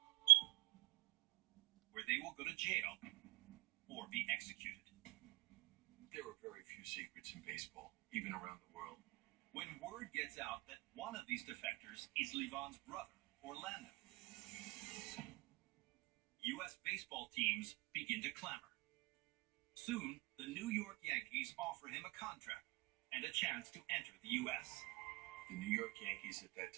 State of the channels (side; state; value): left; quieter; 23.3 dB